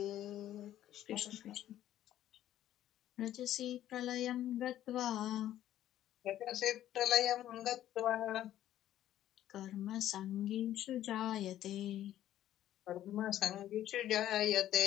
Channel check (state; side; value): quieter; right; 12.5 dB